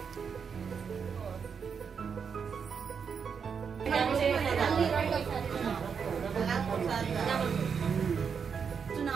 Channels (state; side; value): quieter; left; 6.4 dB